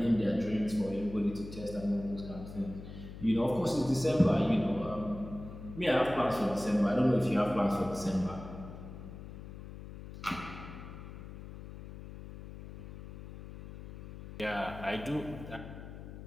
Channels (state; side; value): noise; left; hum, 12 dB below the sound